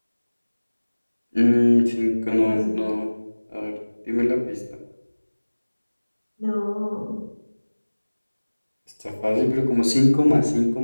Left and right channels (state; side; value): inverted; both; correlation -1.00